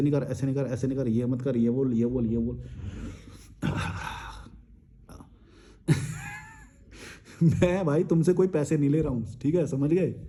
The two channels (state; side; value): identical; both; correlation 1.00